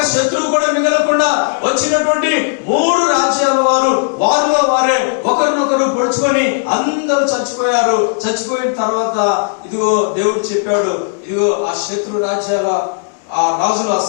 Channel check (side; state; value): right; silent; digital silence